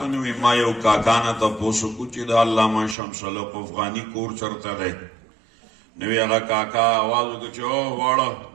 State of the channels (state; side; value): drops out; left; at 3.0 s